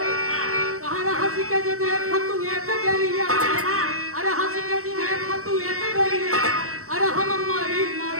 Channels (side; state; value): left; late; 0.64 ms